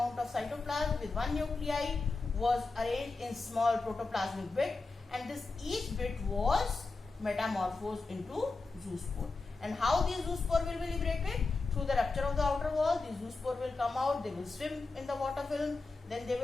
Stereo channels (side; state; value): right; quieter; 3.7 dB